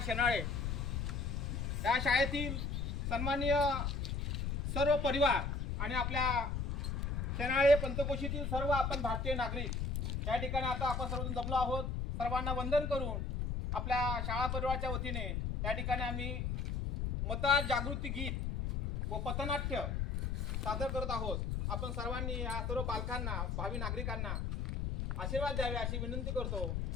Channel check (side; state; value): left; noise; rumble, 1 dB below the sound